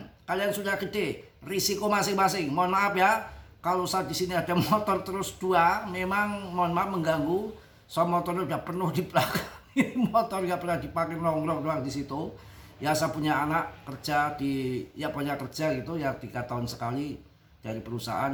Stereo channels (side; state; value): both; identical; correlation 1.00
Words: Kalian sudah gede, risiko masing-masing. Mohon maaf ya, kalau saat di sini ada motor terus dua, memang mohon maaf mengganggu. So motornya udah penuh di belakang. Motor nggak pernah dipakai, nongkrong doang di situ. Ya saya punya anak kerja punya kerja gitu ya 3 tahun sekali dari